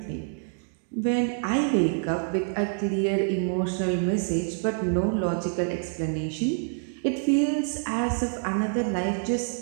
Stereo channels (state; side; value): silent; left; digital silence